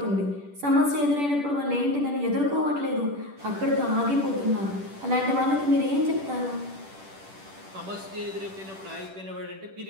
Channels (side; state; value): left; late; 10 ms